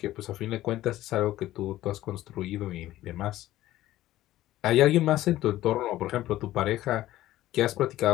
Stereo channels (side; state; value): right; quieter; 14.9 dB